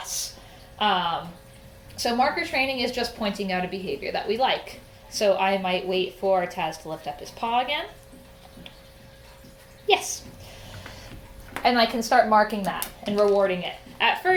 Um, so marker training is just pointing out a behavior that we like. So I might wait for Taz to lift up his paw again. Yes. And I can start marking that and rewarding it. At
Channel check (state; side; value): identical; both; correlation 1.00